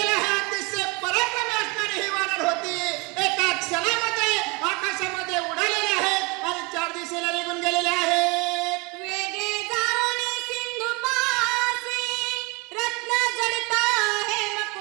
आहे. अतिशय पराक्रमी असणारी ही वानर होती. एका क्षणामध्ये आकाशामध्ये उडालेले आहेत आणि 4 दिशेला निघून गेलेले आहेत. वेगे जाऊन सिंधुपासी रत्न जडित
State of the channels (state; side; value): quieter; left; 27.0 dB